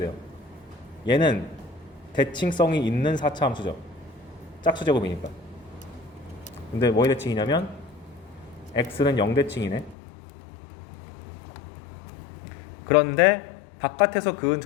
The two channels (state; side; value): drops out; right; at 10.0 s